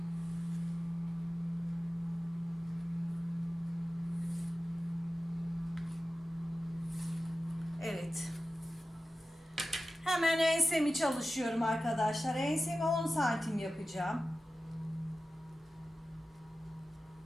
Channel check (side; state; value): both; normal; correlation 0.95